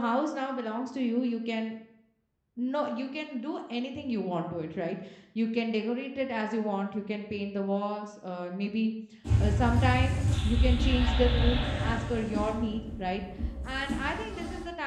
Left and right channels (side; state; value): both; identical; correlation 1.00